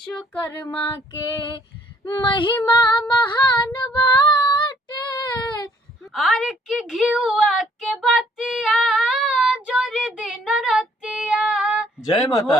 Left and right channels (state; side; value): normal; both; correlation 0.63